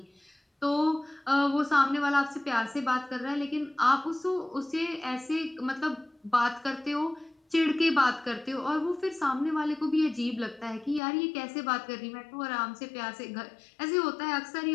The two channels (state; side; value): drops out; right; at 11.0 s